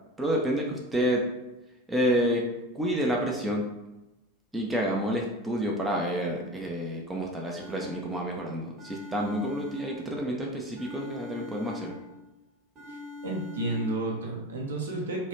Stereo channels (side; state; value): both; normal; correlation 0.35